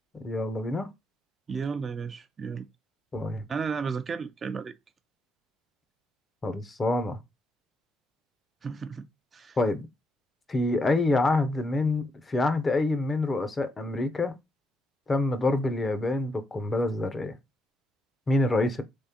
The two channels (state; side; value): normal; both; correlation 0.80